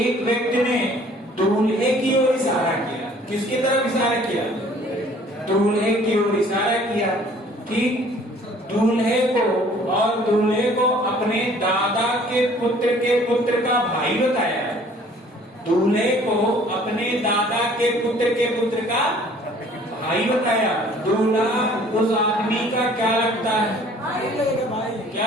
व्यक्ति ने दूल्हे की ओर इशारा किया। किसकी तरफ इशारा किया? दूल्हे की ओर इशारा किया, ठीक। दूल्हे को अपने दादा के पुत्र का भाई बताया। दूल्हे को अपने दादा के पुत्र का भाई बताया। दूल्हा उस आदमी का क्या लगता है? भाई क्या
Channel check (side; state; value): both; normal; correlation 0.54